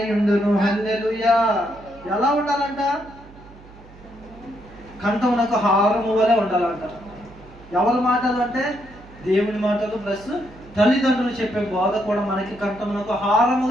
ఉండును. హల్లెలూయా. ఎలా ఉండాలంట? కంఠమునకు హారము వలె ఉండాలంట. ఎవరి మాటలు అంటే దేవుని మాటలు ప్లస్ తల్లిదండ్రులు చెప్పే బోధ కూడా మనకి కంఠమునకు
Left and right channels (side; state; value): right; noise; hum, 21 dB below the sound